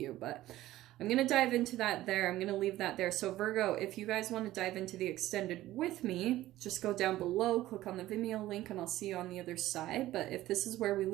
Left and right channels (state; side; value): quieter; left; 15.4 dB